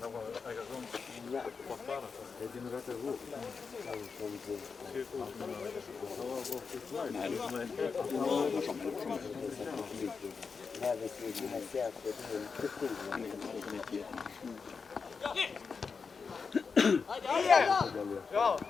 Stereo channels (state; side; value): quieter; right; 5.2 dB